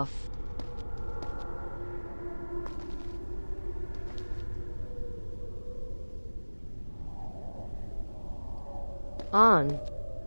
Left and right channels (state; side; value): inverted; both; correlation -1.00